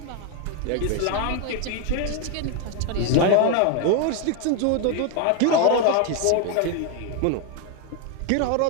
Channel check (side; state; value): both; different; correlation 0.01